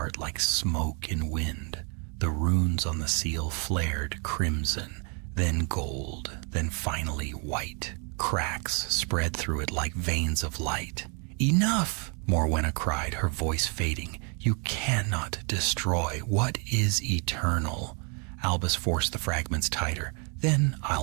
like smoke in wind. The runes on the seal flared crimson, then gold, then finally white. Cracks spread through it like veins of light. "Enough!" Morwenna cried, her voice fading. "You cannot destroy what is eternal." Albus forced the fragments tighter. "Then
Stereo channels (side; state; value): left; quieter; 36.7 dB